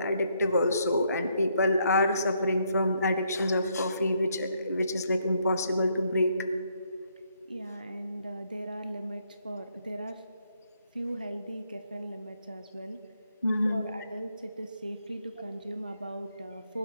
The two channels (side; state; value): both; inverted; correlation -0.73